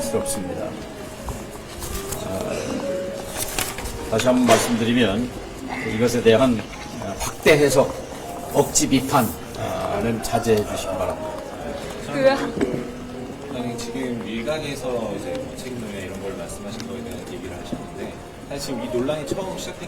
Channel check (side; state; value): both; identical; correlation 1.00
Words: 다시 한번 말씀드리면 이것에 대한 확대 해석, 억지 비판은 자제해 주시기 바랍니다. 아니, 지금 일각에서 이제 책임론이나 이런 걸 말씀하신 거에 대한 얘기를 하셨는데 사실 지금 이 논란이 처음